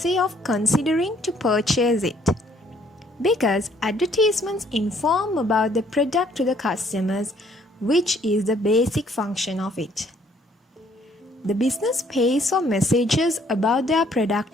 of considering to purchase it, because advertisements inform about the product to the customers, which is the basic function of it. The business pays for messages about their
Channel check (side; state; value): both; normal; correlation 0.63